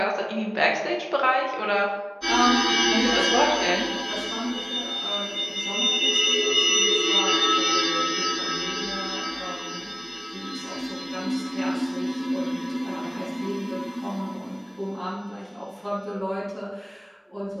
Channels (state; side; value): identical; both; correlation 1.00